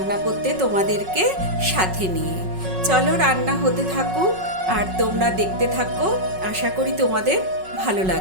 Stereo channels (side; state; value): left; late; 5.4 ms